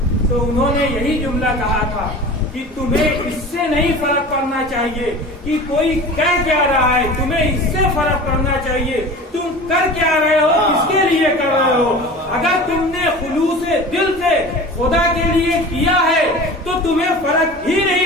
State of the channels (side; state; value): both; normal; correlation 0.37